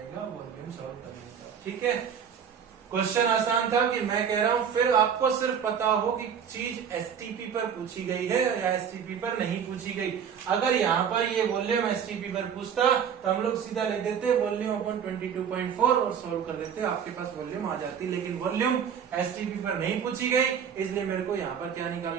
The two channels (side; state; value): left; quieter; 7.7 dB